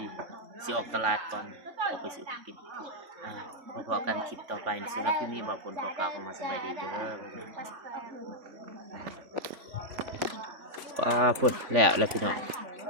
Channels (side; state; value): left; late; 3.6 ms